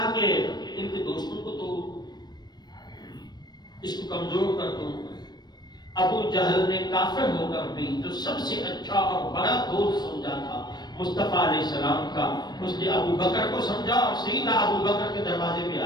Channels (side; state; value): right; late; 0.20 ms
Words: کہ ان کے دوستوں کو تو اس کو کمزور کر دوں۔ ابو جہل نے کافر ہو کر بھی جو سب سے اچھا اور بڑا دوست سمجھا تھا مصطفیٰ علیہ السلام کا، اس نے ابو بکر کو سمجھا اور سیدھا ابو بکر کے دروازے پہ